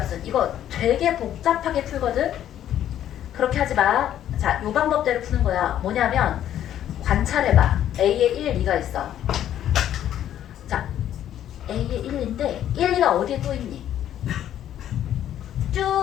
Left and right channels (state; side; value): quieter; right; 11.1 dB